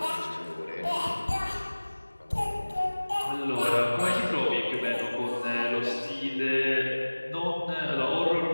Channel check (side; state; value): both; inverted; correlation -1.00